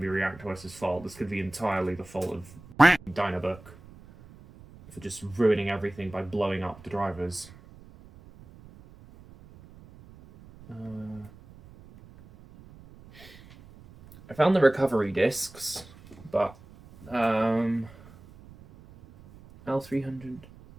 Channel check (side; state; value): right; noise; rumble, 21 dB below the sound